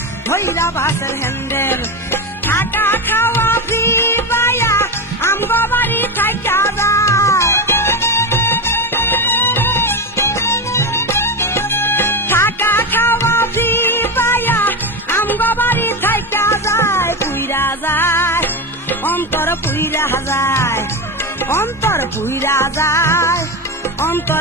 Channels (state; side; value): normal; both; correlation 0.16